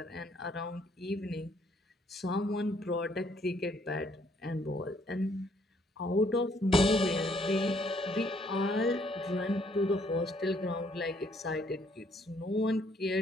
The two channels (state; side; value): normal; both; correlation 0.67